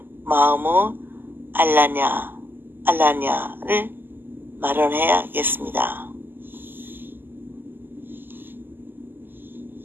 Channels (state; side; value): late; left; 0.094 ms